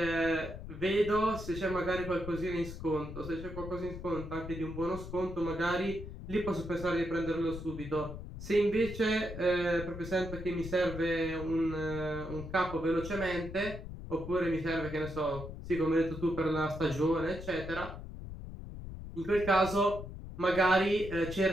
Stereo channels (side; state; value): left; noise; rumble, 10 dB below the sound